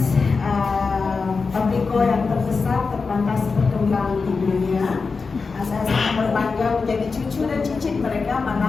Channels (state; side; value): quieter; right; 4.6 dB